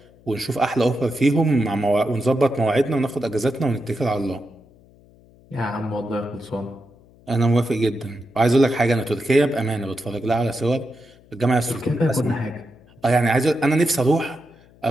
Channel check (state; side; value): noise; left; hum, 27 dB below the sound